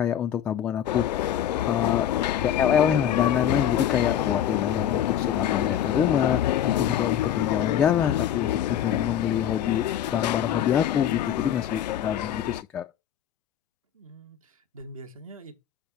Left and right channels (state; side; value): quieter; right; 10.2 dB